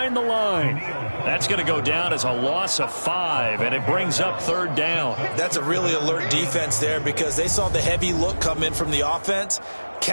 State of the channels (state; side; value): inverted; both; correlation -1.00